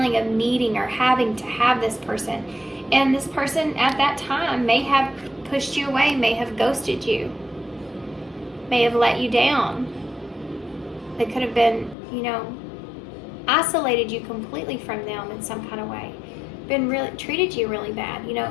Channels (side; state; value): right; drops out; at 12.0 s